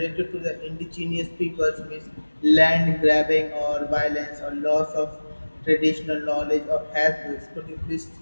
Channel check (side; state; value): both; inverted; correlation -1.00